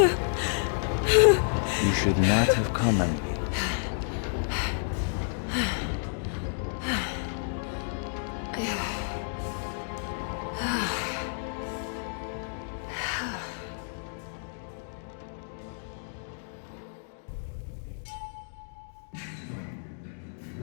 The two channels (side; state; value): right; silent; digital silence